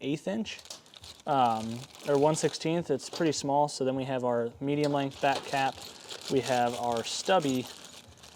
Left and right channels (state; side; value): identical; both; correlation 1.00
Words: 1/8 inch. Or 1/16. It's pretty small. So then we have our medium length back cap. We have our stubby